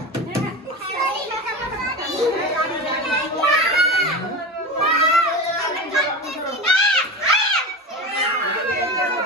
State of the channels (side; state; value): both; normal; correlation 0.26